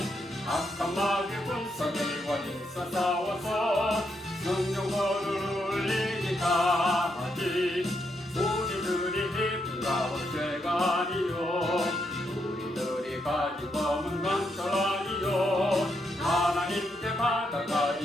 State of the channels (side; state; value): both; normal; correlation 0.79